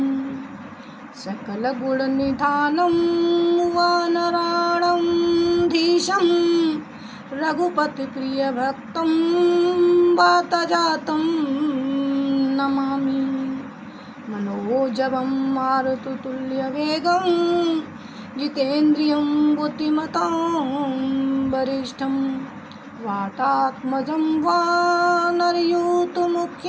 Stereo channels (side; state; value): both; identical; correlation 1.00